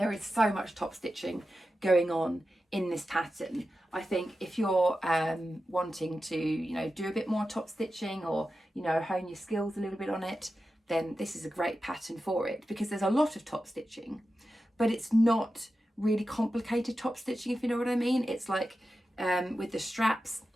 is so much top stitching going on in this pattern. I think if you're wanting to, you know, do a bit more top stitching or, you know, hone your skills a little bit on it, then this is a great pattern for it, because there's a lot of top stitching, but it's not really complicated top stitching, if you know what I mean. It's like with the straps,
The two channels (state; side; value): normal; both; correlation 0.92